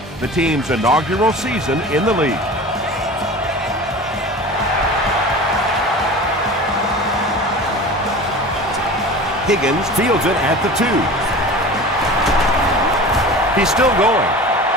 the team's inaugural season in the league. Higgins fields it at the 2. He's still going.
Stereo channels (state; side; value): normal; both; correlation 0.36